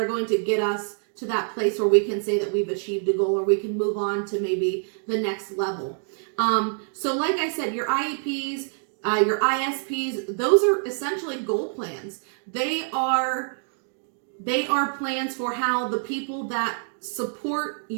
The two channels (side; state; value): left; silent; 61 dB below the other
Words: going to get us to that place where we can say that we've achieved a goal, or we can move on to maybe the next level? So like I said, your IEPs, your ISPs, those are essentially goal plans. They are plans for how the people that support